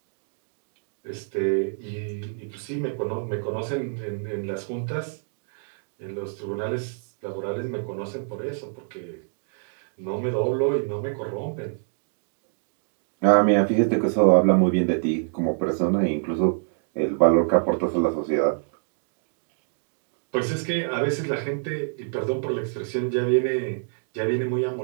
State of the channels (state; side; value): silent; left; digital silence